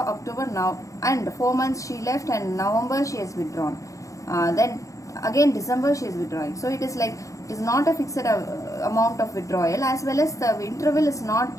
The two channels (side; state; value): right; late; 0.16 ms